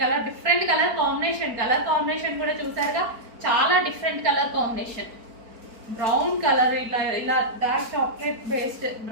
colour, different colour combination కూడా చూసారుగా, చాలా different colour combination. Brown colour, ఇలా dark chocolate based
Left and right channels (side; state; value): left; late; 4.5 ms